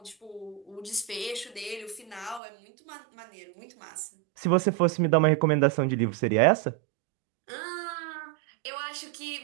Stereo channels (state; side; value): drops out; left; at 2.4 s